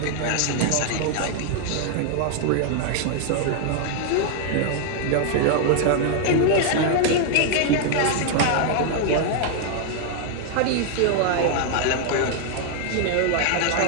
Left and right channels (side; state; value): both; different; correlation 0.00